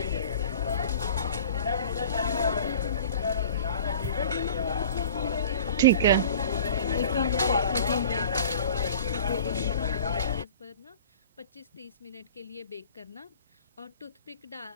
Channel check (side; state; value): both; inverted; correlation -0.43